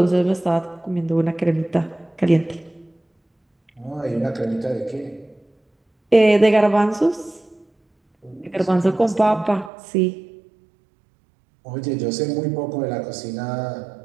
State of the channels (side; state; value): left; drops out; at 9.7 s